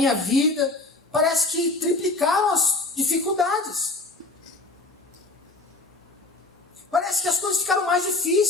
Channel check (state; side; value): quieter; right; 3.2 dB